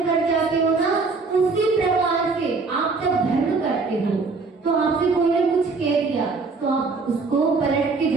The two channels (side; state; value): left; quieter; 4.2 dB